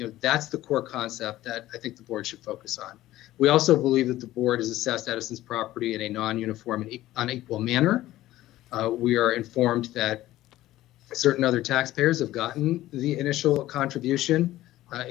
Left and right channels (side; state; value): right; quieter; 15.4 dB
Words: core concept that I think the board should focus on. We also believe that the board has assessed Edison's property in a non-uniform and unequal manner. We are informed that certain other taxpayers have gotten the initial contribution